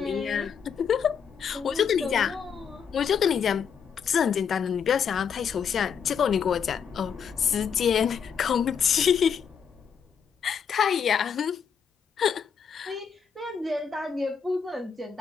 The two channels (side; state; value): right; quieter; 7.0 dB